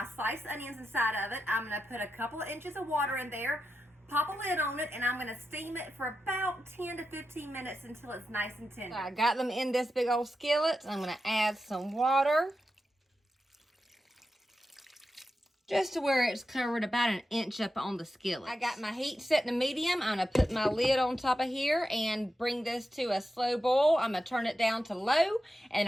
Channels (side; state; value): both; normal; correlation 0.89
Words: sliced onions inside of it. I'm going to put a couple of inches of water in there, pop a lid on it, and I'm going to steam it for about 10 to 15 minutes until it's nice and tender. I got them in this big old skillet. I'm going to add some water, just to where it's covered about an inch up on the skillet. I got my heat set to medium. I'm going to put my lid on top of here and bring this to a slow boil. I'm going to turn it down to low,